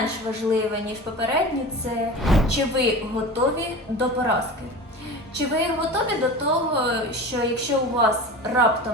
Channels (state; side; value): normal; both; correlation 0.33